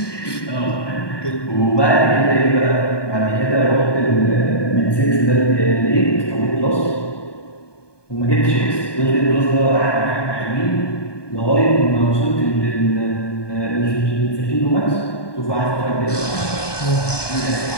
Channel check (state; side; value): late; right; 1.2 ms